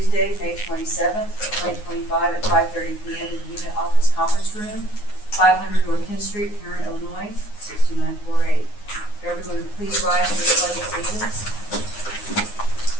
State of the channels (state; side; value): late; right; 9.6 ms